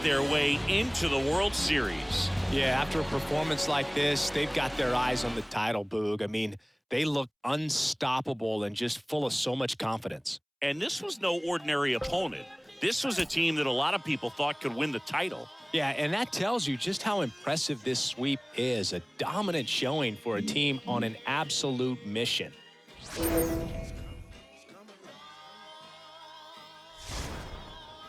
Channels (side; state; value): both; identical; correlation 1.00